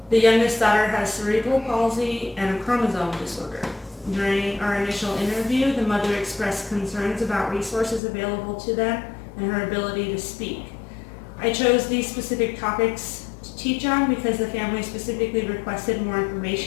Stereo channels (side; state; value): right; drops out; at 8.0 s